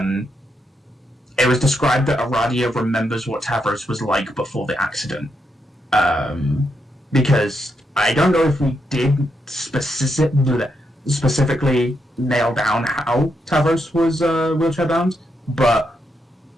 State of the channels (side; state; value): both; normal; correlation 0.81